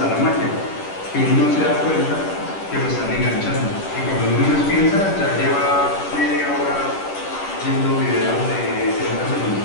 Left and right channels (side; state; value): right; late; 10 ms